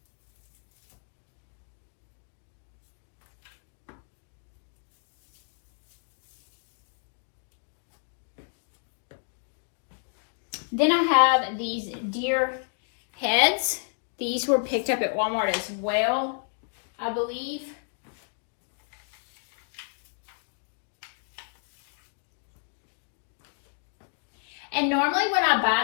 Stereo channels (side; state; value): right; silent; 57 dB below the other